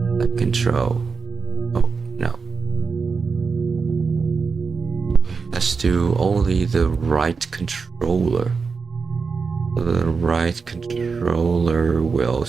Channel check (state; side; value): quieter; left; 5.0 dB